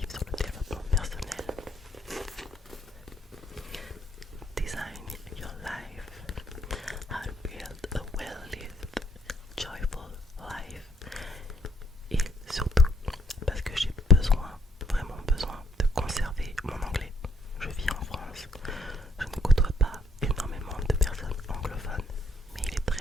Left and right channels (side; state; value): both; normal; correlation 0.68